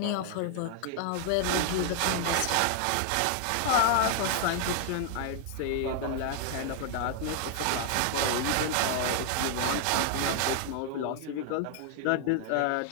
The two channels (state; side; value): different; both; correlation 0.00